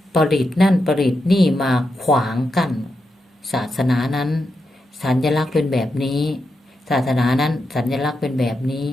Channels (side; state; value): both; normal; correlation 0.86